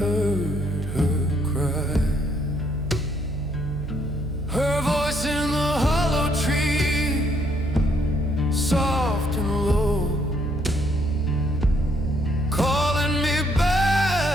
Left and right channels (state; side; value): noise; right; hum, 7 dB below the sound